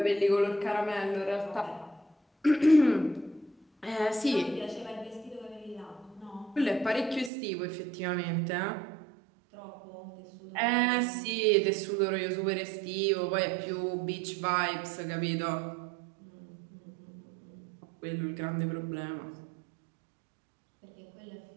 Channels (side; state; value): left; drops out; at 7.3 s